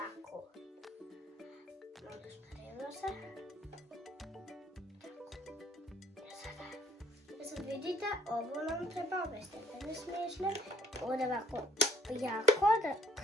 Malo spravimo se. Sad vidite, ovo nam treba ove stepene smiješne. Ovdje ovako jako da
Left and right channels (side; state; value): both; normal; correlation 0.62